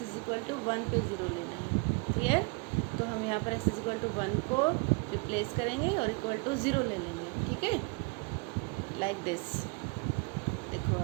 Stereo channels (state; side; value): quieter; left; 31.3 dB